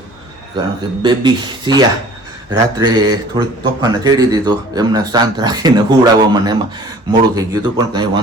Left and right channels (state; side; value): normal; both; correlation 0.49